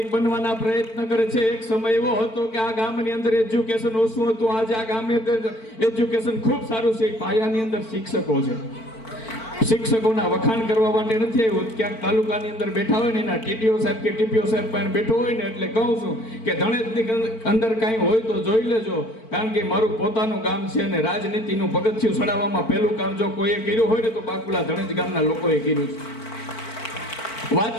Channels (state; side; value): late; right; 4.5 ms